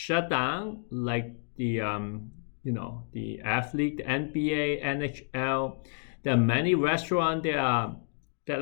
down, like the athlete, the NBA, NHL. There are many restaurants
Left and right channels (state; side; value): silent; right; 58 dB below the other